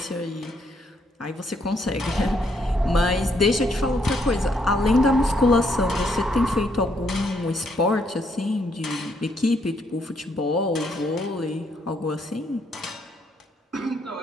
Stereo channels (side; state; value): both; normal; correlation 0.73